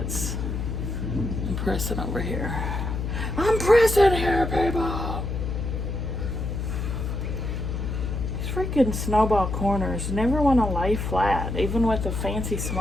I'm pressing over here. I'm pressing here, people! These freaking snowball corners never want to lay flat, even with a fancy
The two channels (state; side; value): noise; left; hum, 3 dB below the sound